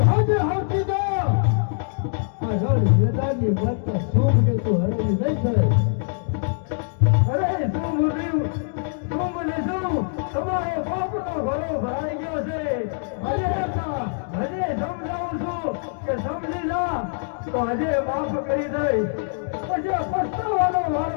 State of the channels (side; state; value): right; silent; digital silence